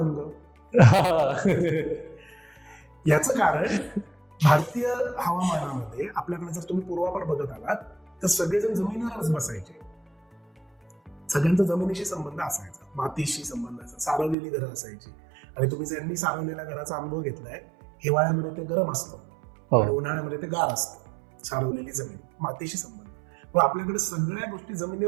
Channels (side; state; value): left; drops out; at 14.4 s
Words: याचं कारण भारतीय हवामानामध्ये आपल्याकडे जर तुम्ही पूर्वापार बघत आलात तर सगळेजण जमिनीवरच बसायचे. सगळ्यांचा जमिनीशी संबंध असायचा, मातीशी संबंध असायचा, सारवलेली घरं असायची. आणि तुम्ही ज्यांनी सारवलेल्या घराचा अनुभव घेतलाय, हिवाळ्यामध्ये ते गरम असतं आणि उन्हाळ्यामध्ये ते गार असतं. सारवलेली जमीन, मातीशी संबंध. मग आपल्याकडे सगळ्या गोष्टी